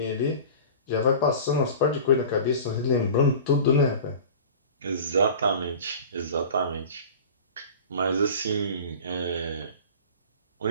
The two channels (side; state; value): both; inverted; correlation -0.38